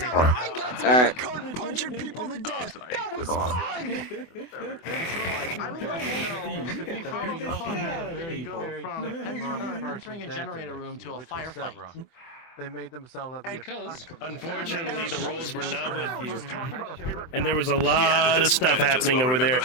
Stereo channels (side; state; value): right; late; 24 ms